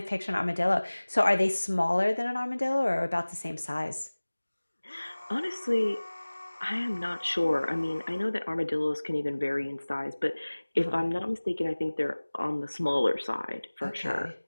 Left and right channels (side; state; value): both; inverted; correlation -1.00